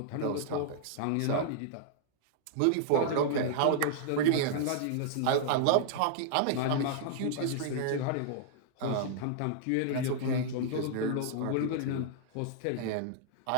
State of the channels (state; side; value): different; both; correlation -0.01